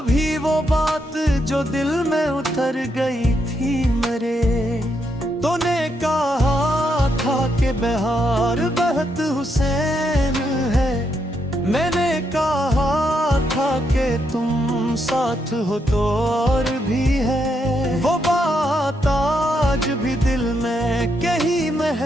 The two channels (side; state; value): both; normal; correlation 0.79